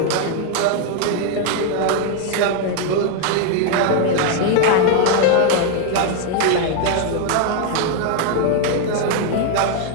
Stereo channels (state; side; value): different; both; correlation 0.00